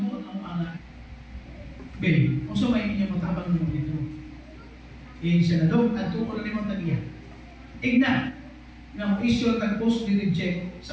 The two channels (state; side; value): identical; both; correlation 1.00